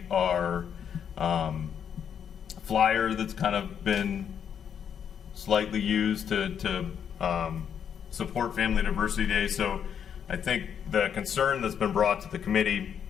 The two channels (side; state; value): right; quieter; 8.1 dB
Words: our flyer that's kind of been slightly used to support Family Diversity Day. So I think the concern that's been brought to the committee